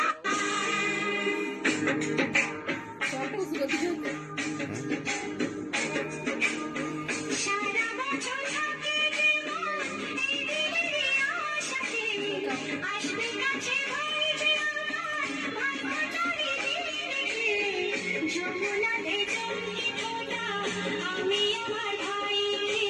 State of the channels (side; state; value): both; identical; correlation 1.00